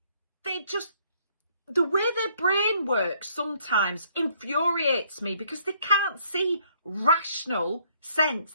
the way their brain works sometimes infuriates me because they can't see rational sense.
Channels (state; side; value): inverted; both; correlation -0.66